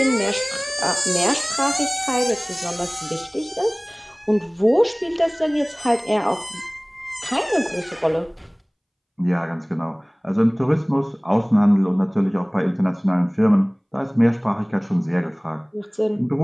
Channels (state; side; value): identical; both; correlation 1.00